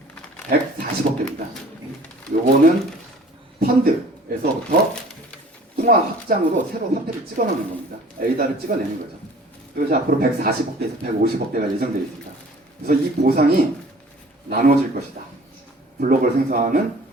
140억 개입니다. 요거는 펀드에서부터 통화 확장으로 새로 화폐를 찍어넣는 겁니다. 에이다를 찍어내는 거죠. 그래서 앞으로 140억 개에서 150억 개가 예정되어 있습니다. 그래서 이 보상이 나눠질 것이다. 블록을 생성하는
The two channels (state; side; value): normal; both; correlation 0.49